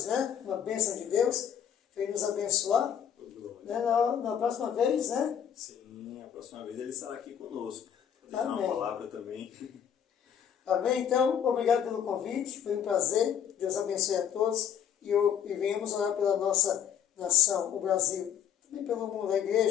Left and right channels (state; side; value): quieter; right; 8.7 dB